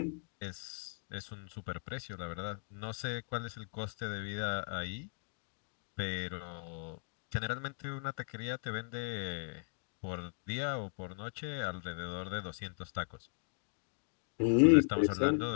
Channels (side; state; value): right; silent; digital silence